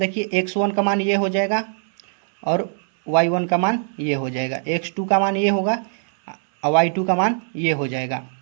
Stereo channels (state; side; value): silent; left; digital silence